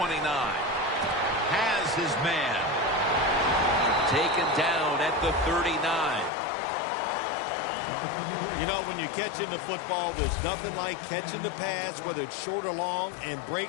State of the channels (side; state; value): right; drops out; at 6.3 s